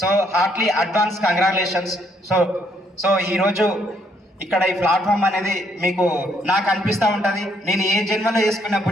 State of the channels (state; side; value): normal; both; correlation 0.70